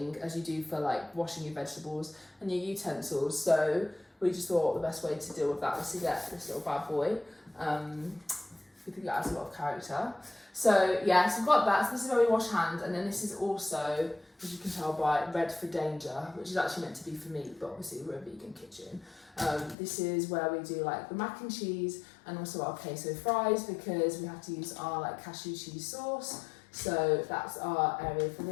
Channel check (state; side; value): drops out; right; at 19.8 s